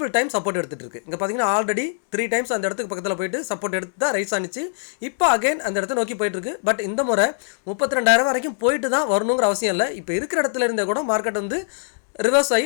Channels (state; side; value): silent; right; digital silence